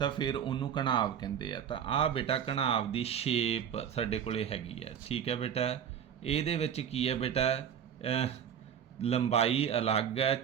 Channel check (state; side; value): quieter; left; 8.6 dB